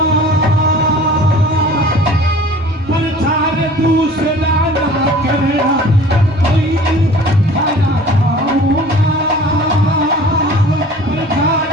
प्रचार दूसरा ना करना, कोई थाना गाऊंगा, प्रचार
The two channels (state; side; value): normal; both; correlation 0.45